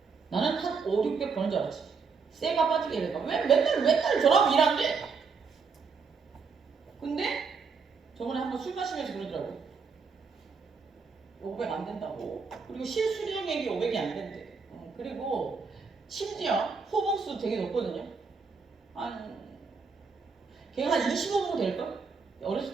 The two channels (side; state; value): left; quieter; 5.2 dB